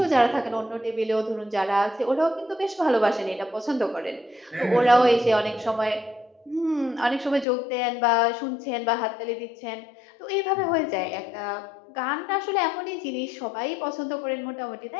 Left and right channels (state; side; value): drops out; right; at 7.5 s